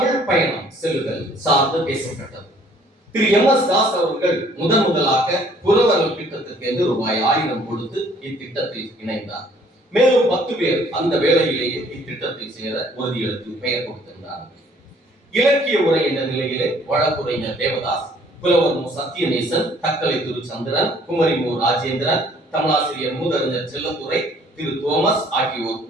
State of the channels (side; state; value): both; normal; correlation 0.59